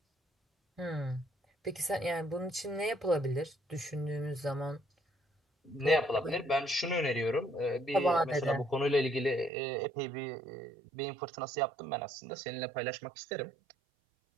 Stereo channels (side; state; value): left; drops out; at 9.5 s